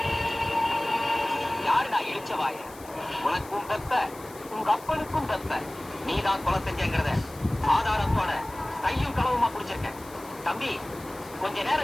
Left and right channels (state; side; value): noise; left; hiss, 20 dB below the sound